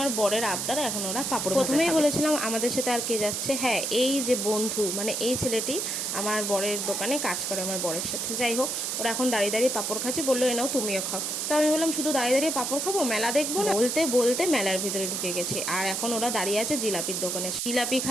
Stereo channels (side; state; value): right; noise; hiss, 1 dB below the sound